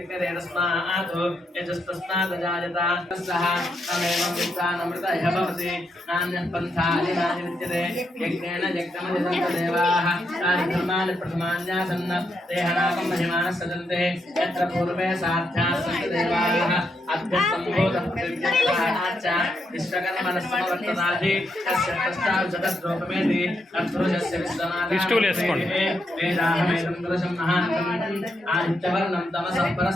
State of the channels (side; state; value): both; normal; correlation 0.80